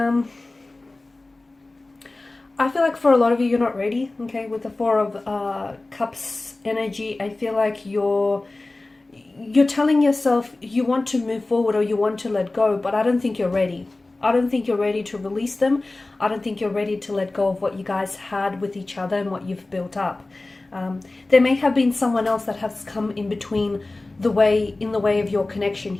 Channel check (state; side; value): quieter; right; 3.0 dB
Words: I feel like for a lot of you, you're not ready, okay? With the Four of Cups energy, I feel like you're telling yourself you want to move forward or you want to let go, but I don't think you're ready. I don't think you're ready to release them. I don't think you're ready to let go of what you guys had with each other and what you've built up. There may have been someone else that has come in between in the way of your connection